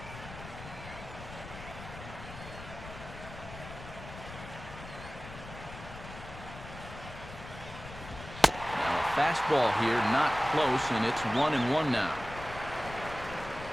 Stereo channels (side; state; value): left; noise; rumble, 13 dB below the sound